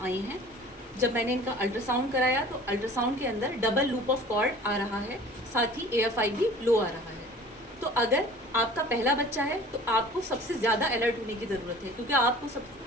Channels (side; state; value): both; normal; correlation 0.45